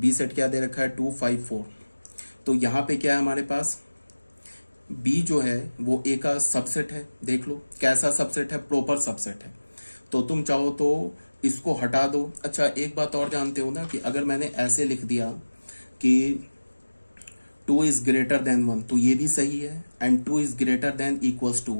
सेट क्या दे रखा है 2 5 4। तो यहाँ पे क्या है हमारे पास, बी जो है वो ए का सबसेट है। देख लो कैसा सबसेट है, प्रॉपर सबसेट है। तो तुम चाहो तो इसको हटा दो। अच्छा, एक बात और जानते हो ना कि अगर मैंने ऐसे लिख दिया कि 2 इज ग्रेटर देन 1 तो ये भी सही है, and 2 is greater than equals to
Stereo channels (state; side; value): inverted; both; correlation -1.00